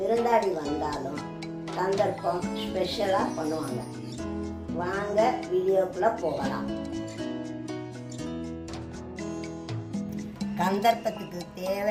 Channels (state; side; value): identical; both; correlation 1.00